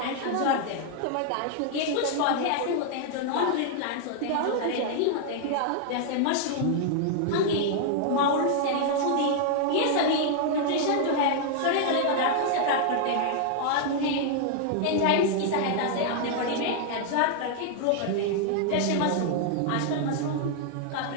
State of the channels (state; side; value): different; both; correlation 0.00